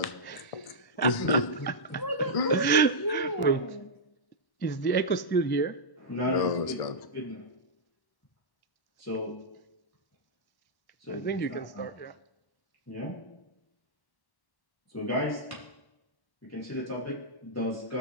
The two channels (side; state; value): right; late; 1.1 ms